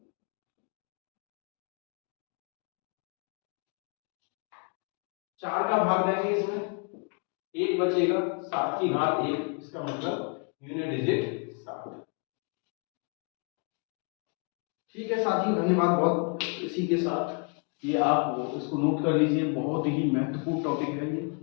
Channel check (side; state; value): right; quieter; 38.0 dB